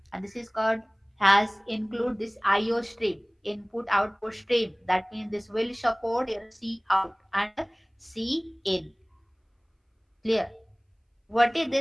and this is called has include this IO stream, input output stream. That means this will support your C out and C in. Clear? What is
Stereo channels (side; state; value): both; identical; correlation 1.00